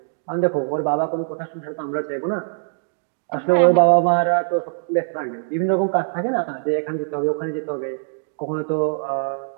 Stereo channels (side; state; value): left; silent; digital silence